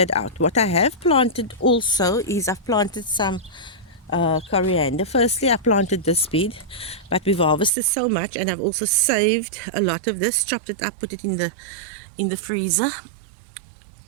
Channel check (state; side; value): drops out; left; at 7.7 s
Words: out. What I have planted also is I've planted some coriander. Firstly, I planted this bed, but we've harvested so much, and I've also saved a lot of this, chopped it up, put it in the freezer.